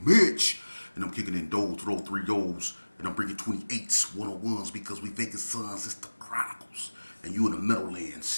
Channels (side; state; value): both; inverted; correlation -1.00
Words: Mitch. And I'm kicking in those, throw 3 goals. And I'm bringing 28s, 101s because we vacant sons. It's the Chronicles. And you in the